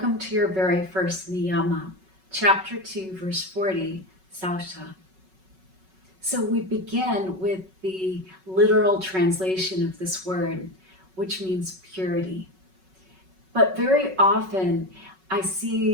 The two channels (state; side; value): late; left; 5.4 ms